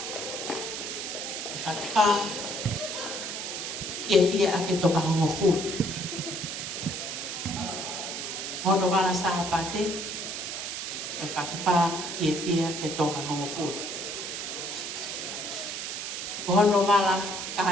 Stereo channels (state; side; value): noise; right; hiss, 5 dB below the sound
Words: Whakapa ia ake toka hongo fu. Hono wala sa pate. Whakapa ia ake toka hongo fu. Hono wala